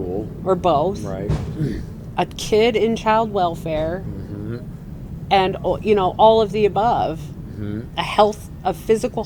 or both, a kid in child welfare, and, you know, all of the above, a physical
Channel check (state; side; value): identical; both; correlation 1.00